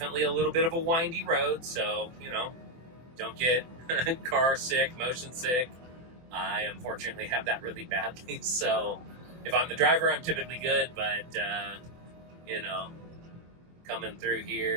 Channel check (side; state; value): left; late; 24 ms